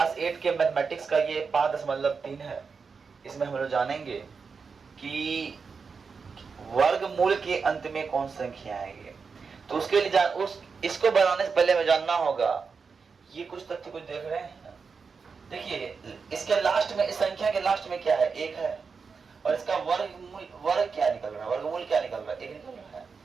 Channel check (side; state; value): left; quieter; 5.3 dB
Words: 8 के मैथमेटिक्स का ये 5.3 है। इसमें हम लोग जानेंगे कि वर्गमूल के अंत में कौन सी संख्या आएगी। तो उसके लिए इसको बनाने से पहले हमें जानना होगा, ये कुछ तथ्य कुछ देख रहे हैं। देखिए, इसके लास्ट में, इस संख्या के लास्ट में क्या है? 1 है, और इसका वर्ग क्या निकल रहा है? वर्गमूल क्या निकल रहा है? 1 निकल रहा है।